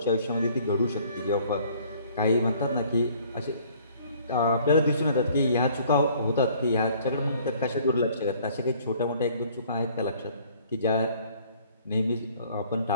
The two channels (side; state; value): both; inverted; correlation -0.57